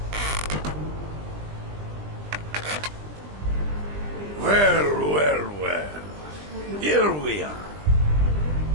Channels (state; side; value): late; left; 20 ms